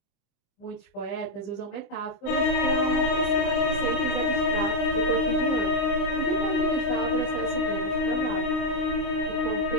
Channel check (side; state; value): right; late; 26 ms